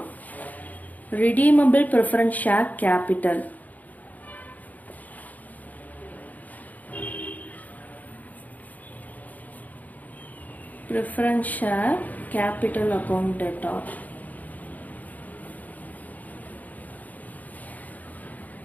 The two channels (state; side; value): late; right; 0.079 ms